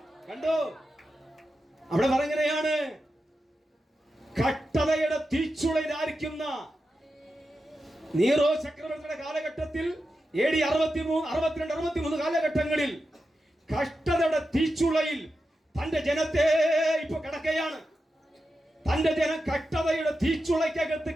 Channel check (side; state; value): both; normal; correlation 0.90